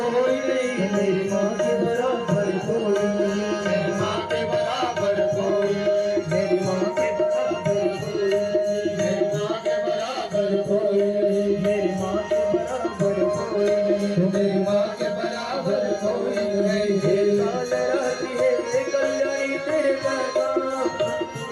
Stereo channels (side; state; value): both; identical; correlation 1.00